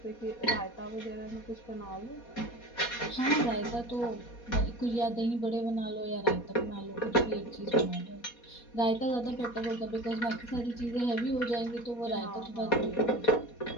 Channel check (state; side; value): late; right; 4.2 ms